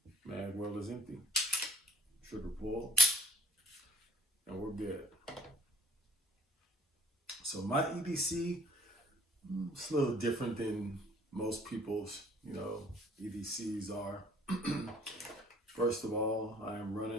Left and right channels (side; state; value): both; normal; correlation 0.62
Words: Mag well is empty. Trigger pull. And we're good. So my EDC, it's a little different than most people's, EDCs are. First of all, I am